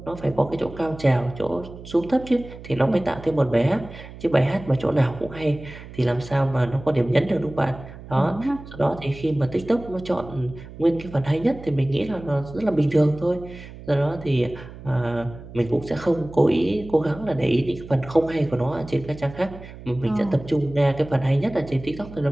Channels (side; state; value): right; noise; hum, 15 dB below the sound